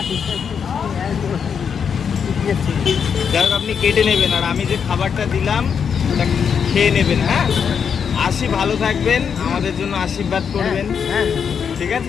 যাই হোক, আপনি কেটে নেবেন, আর আমি যে খাবারটা দিলাম ওটা খেয়ে নেবেন। হ্যাঁ, আসি, ভালো থাকবেন, আমাদের জন্য আশীর্বাদ করবেন, ঠিক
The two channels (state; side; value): quieter; right; 7.0 dB